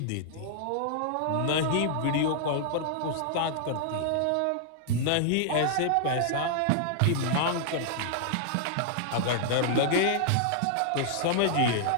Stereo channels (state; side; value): different; both; correlation -0.01